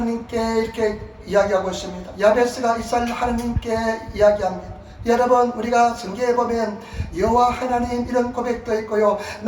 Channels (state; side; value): identical; both; correlation 1.00